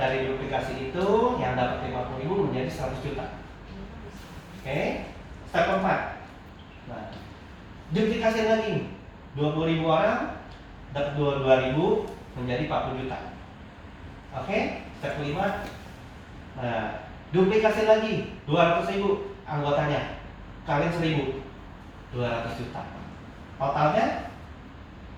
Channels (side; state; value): both; identical; correlation 1.00